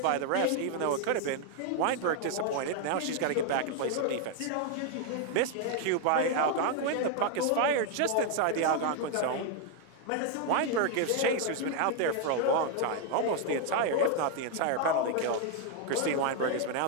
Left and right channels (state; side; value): different; both; correlation 0.00